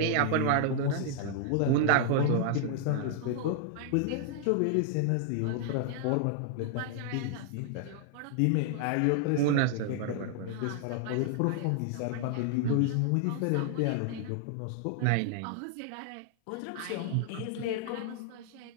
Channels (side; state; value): both; different; correlation -0.01